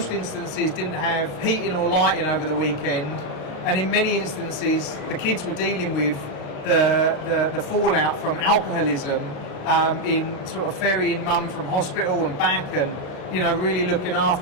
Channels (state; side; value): late; right; 35 ms